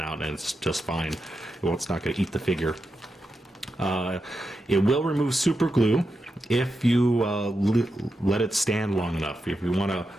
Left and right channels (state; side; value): normal; both; correlation 0.88